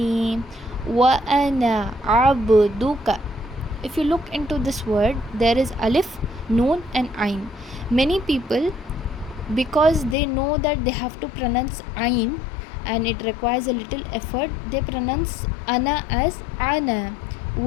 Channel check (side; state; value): right; drops out; at 10.2 s